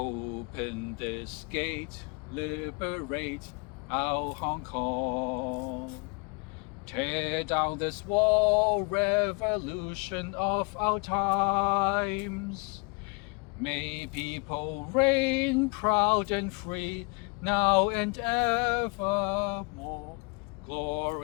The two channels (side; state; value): right; quieter; 33.3 dB